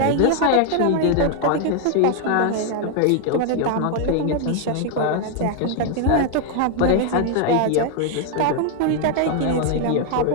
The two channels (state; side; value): different; both; correlation 0.00